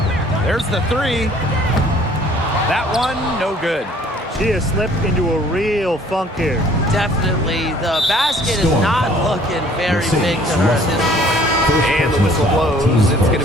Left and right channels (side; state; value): both; normal; correlation 0.56